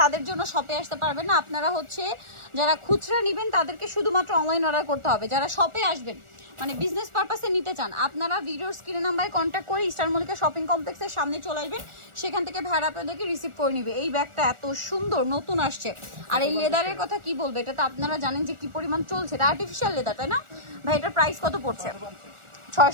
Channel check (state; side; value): late; left; 1.4 ms